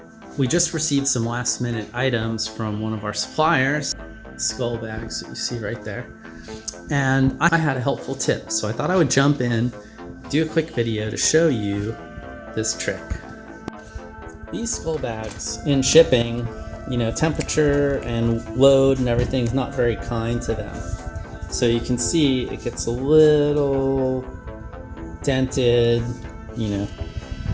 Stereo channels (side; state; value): both; identical; correlation 1.00